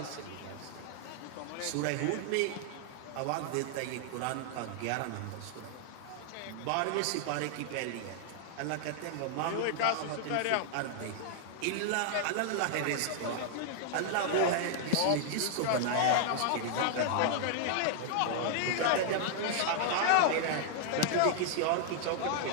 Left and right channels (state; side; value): different; both; correlation 0.00